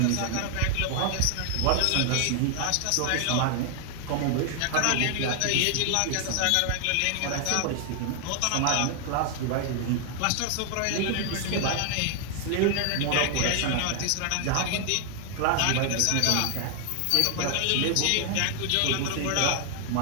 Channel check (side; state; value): both; different; correlation 0.00